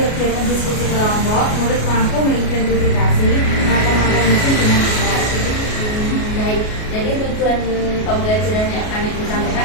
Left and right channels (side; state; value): right; late; 33 ms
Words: kegiatan diskusi kelompok, murid mampu mengidentifikasi mata-mata musim dengan benar. Baik, jadi tujuan pembelajaran yang akan Ibu